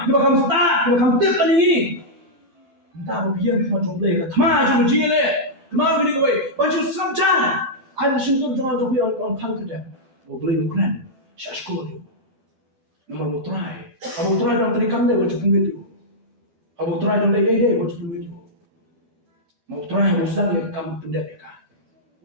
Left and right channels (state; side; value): late; left; 12 ms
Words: bakam start bakam tip kan ini entah biar cuma jomble ka thama jom jile kemau bini kowe bantu sabjan Ada sentuh jangan jogi on kada. Mau beli makanan, saya sekolah. Nama mau try. Abang try dalam terikan dia wajib video. Abang try dalam dia wajib video. Mau try mau sedang dia kamu pendat dia kan.